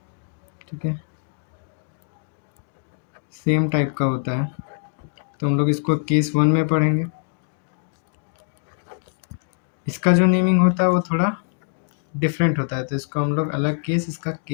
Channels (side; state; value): right; silent; digital silence